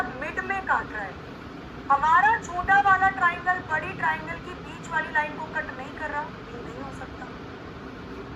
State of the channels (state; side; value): identical; both; correlation 1.00